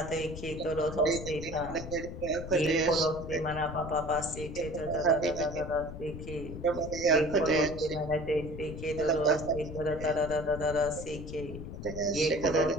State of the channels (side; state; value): left; noise; rumble, 9 dB below the sound